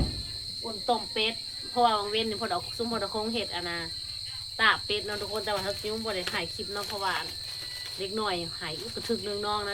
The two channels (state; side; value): identical; both; correlation 1.00